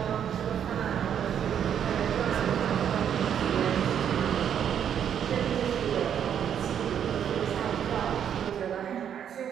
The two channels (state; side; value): quieter; left; 8.9 dB